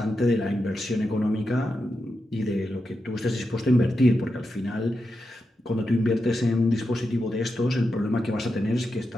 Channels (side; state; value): both; normal; correlation 0.88